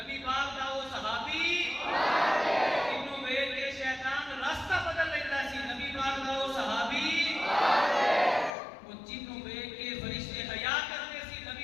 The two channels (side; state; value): right; drops out; at 8.6 s